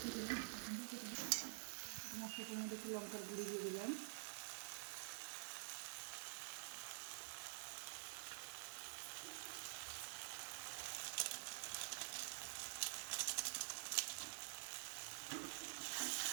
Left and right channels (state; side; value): silent; left; digital silence